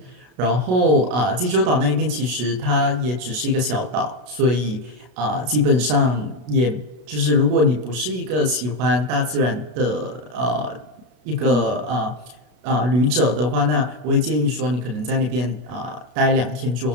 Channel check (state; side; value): late; left; 33 ms